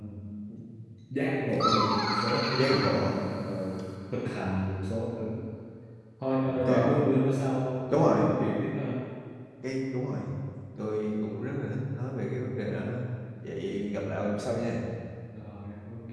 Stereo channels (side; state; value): both; identical; correlation 1.00